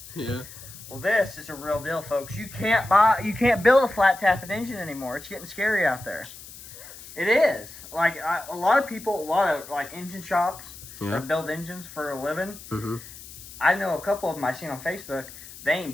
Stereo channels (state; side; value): noise; left; hiss, 16 dB below the sound